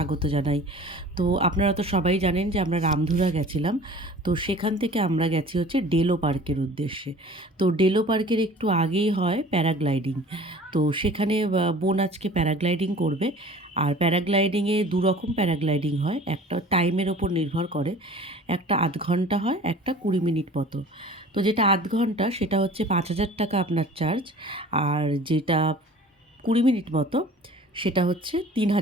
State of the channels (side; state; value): both; normal; correlation 0.45